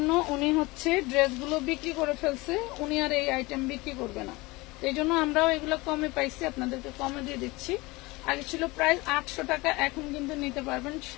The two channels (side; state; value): right; quieter; 22.7 dB